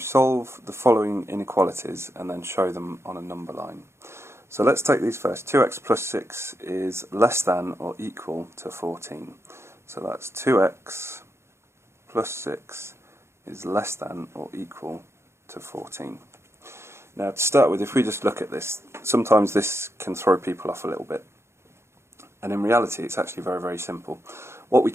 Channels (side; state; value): left; late; 0.13 ms